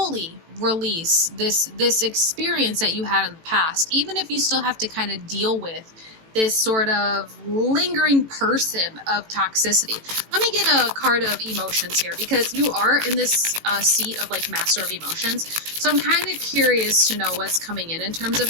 release this experience that you had in the past, even if you still have to kind of deal with this sort of lingering person of toxicity. Let me get a card of emotions here, because you are in this seat of like master of emotions. So I'm kind of curious to know what's coming in terms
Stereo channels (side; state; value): left; late; 18 ms